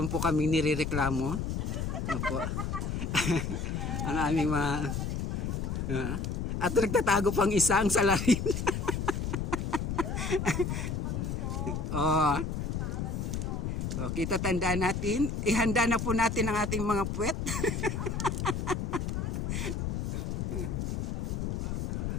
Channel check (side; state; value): left; noise; rumble, 2 dB below the sound